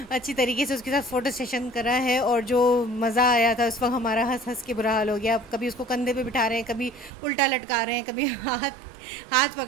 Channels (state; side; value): drops out; left; at 7.1 s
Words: उसके साथ फ़ोटो सेशन करा है। और जो मज़ा आया था उस वक्त, हमारा हंस हंस के बुरा हाल हो गया। कभी उसको कंधे पे बिठा रहे हैं, कभी उल्टा लटका रहे हैं, कभी हाथ